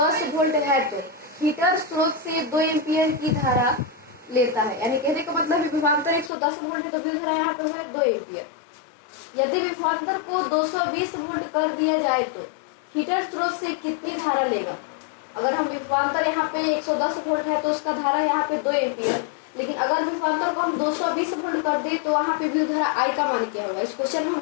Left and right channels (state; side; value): drops out; right; at 6.3 s